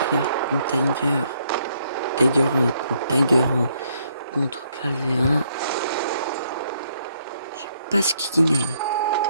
Tiger 1 contre Tiger 1 contre Clavé 1. Je sais pas ce qui gagne.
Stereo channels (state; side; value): inverted; both; correlation -0.71